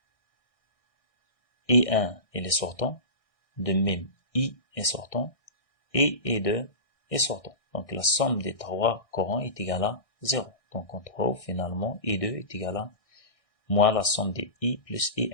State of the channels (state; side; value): late; right; 1.6 ms